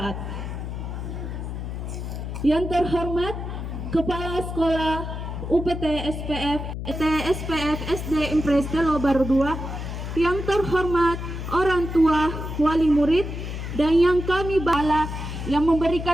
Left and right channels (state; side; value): noise; left; hum, 6 dB below the sound